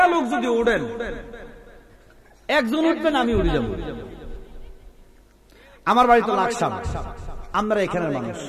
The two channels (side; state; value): both; identical; correlation 1.00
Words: লোক যদি উড়েন, একজন উঠবেন, আমি উড়ে যাব। আমার বাড়ি তো লাকসাম, আমরা এখানের মানুষ।